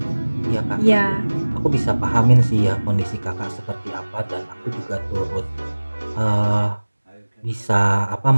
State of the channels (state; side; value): inverted; both; correlation -1.00